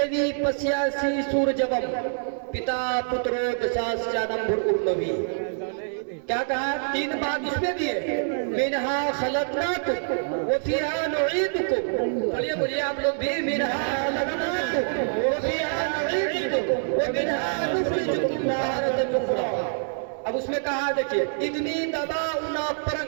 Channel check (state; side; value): silent; left; digital silence